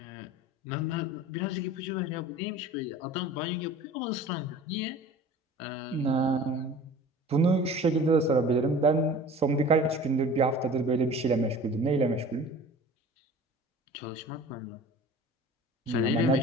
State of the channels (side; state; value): both; normal; correlation 0.41